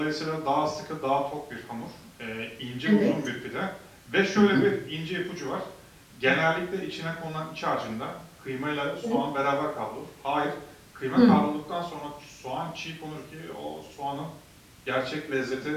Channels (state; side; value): identical; both; correlation 1.00